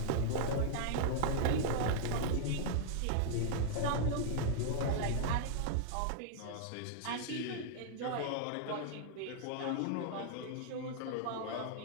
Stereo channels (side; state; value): both; different; correlation -0.01